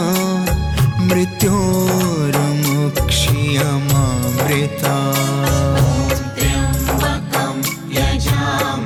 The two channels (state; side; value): identical; both; correlation 1.00